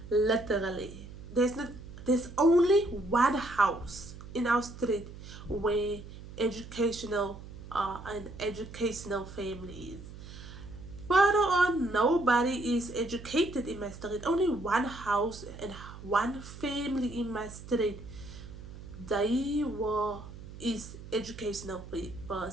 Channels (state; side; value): noise; right; hum, 14 dB below the sound